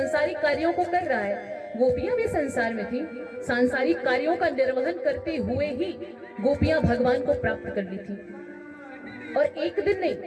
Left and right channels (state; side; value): identical; both; correlation 1.00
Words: कार्यों को कर रहा है। गोपियां भी संसार में थी, सांसारिक कार्यों का निर्वहन करते हुए ही गोपियां भगवान को प्राप्त कर ली थी। और एक दिन